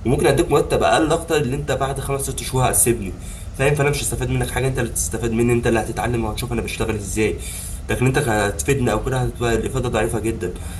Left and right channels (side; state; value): both; identical; correlation 1.00